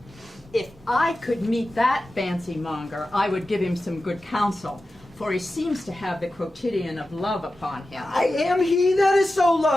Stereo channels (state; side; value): normal; both; correlation 0.93